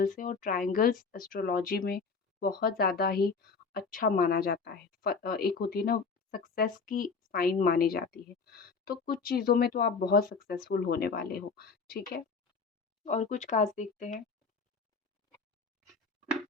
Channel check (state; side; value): quieter; right; 4.9 dB